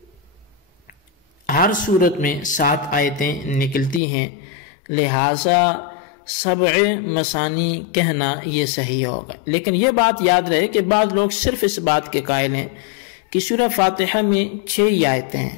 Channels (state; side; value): drops out; right; at 4.0 s